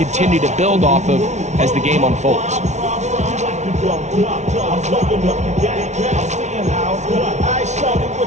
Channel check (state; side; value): late; left; 0.33 ms